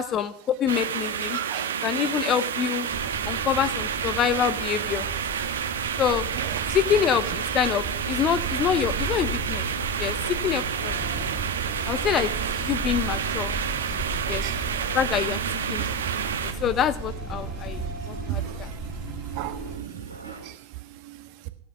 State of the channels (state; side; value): normal; both; correlation 0.17